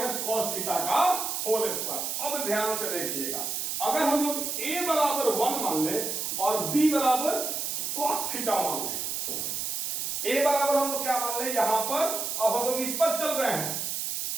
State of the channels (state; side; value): noise; right; hiss, 2 dB below the sound